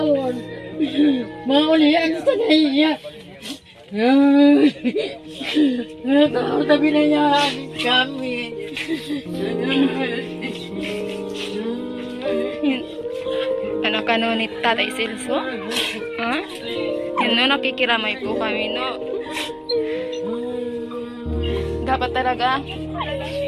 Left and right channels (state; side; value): identical; both; correlation 1.00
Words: Maulihan sa naiya. Tao na binayaan kami. Anak ka no ni Tatay Celso? Ha? Yun no, nakikiramay po kami no. Dapat talaga